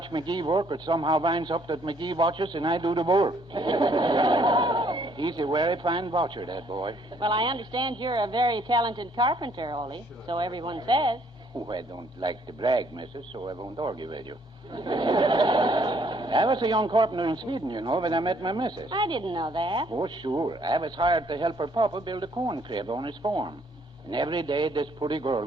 McGee work, it somehow winds up that McGee watches and I do the work. He's a very fine voucher, that boy. Well, I understand you're a very talented carpenter, Ole. So everyone says. Oh, I don't like to brag, missus, so I won't argue with you. I was a young carpenter in Sweden, you know, when I met my missus. I didn't know that. Oh, sure. I was hired to help her papa build a corn crib on his farm. And every day this pretty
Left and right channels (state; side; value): normal; both; correlation 0.65